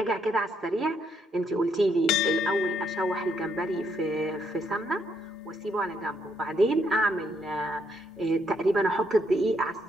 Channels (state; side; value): normal; both; correlation 0.74